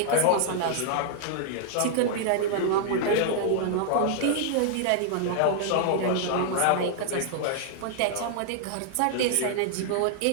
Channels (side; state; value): both; different; correlation -0.01